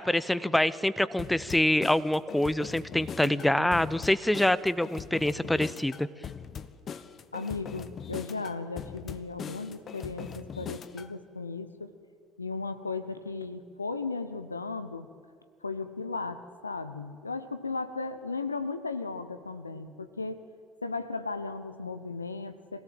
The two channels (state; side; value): normal; both; correlation 0.67